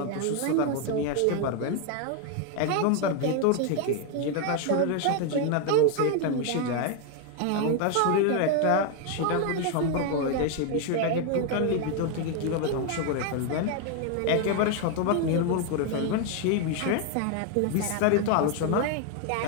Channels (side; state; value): both; different; correlation 0.01